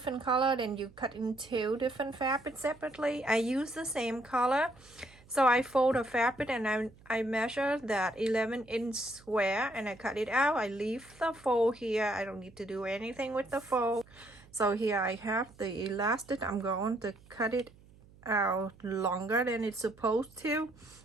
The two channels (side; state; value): right; noise; hum, 25 dB below the sound